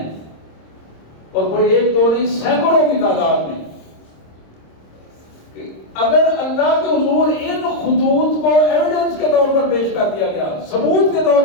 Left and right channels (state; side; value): late; right; 26 ms